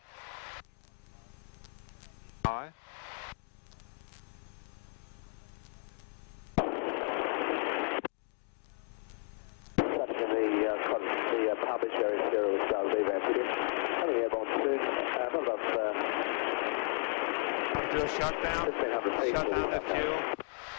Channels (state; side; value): silent; right; 55 dB below the other